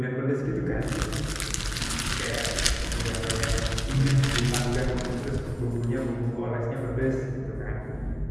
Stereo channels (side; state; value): both; identical; correlation 1.00